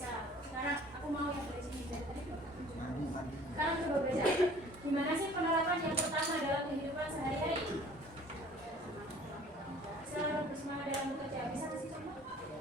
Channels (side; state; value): both; normal; correlation 0.51